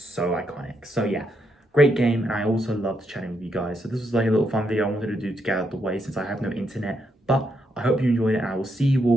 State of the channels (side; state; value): both; normal; correlation 0.79